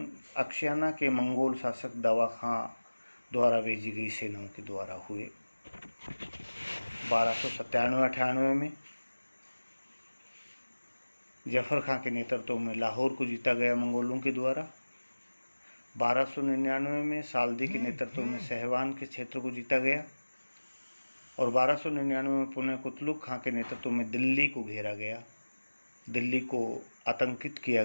अक्शियाना के मंगोल शासक दावा खां द्वारा भेजी गई सेनाओं के द्वारा हुए। 1297-98 में जफर खां के नेतृत्व में लाहौर को जीता गया मंगोलों के द्वारा। 1299 में साल्दी के नेतृत्व में सहवान के क्षेत्र को जीता गया। और 1299 में पुनः कुतलुक खां के नेतृत्व में दिल्ली को घेरा गया, दिल्ली को आतंकित किया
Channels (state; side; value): inverted; both; correlation -1.00